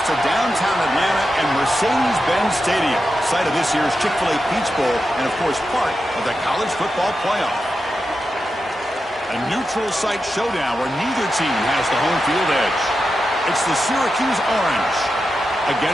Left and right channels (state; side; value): normal; both; correlation 0.89